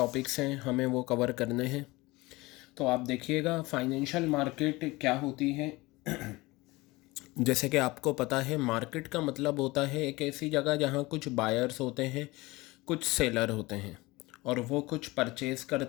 हैं हमें वो कवर करने हैं। तो आप देखिएगा फाइनेंशियल मार्केट क्या होती है। जैसे कि आपको पता है मार्केट का मतलब होता है एक ऐसी जगह जहाँ कुछ बायर्स होते हैं, कुछ सेलर होते हैं और वो कुछ परचेज़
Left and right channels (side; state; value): right; quieter; 21.6 dB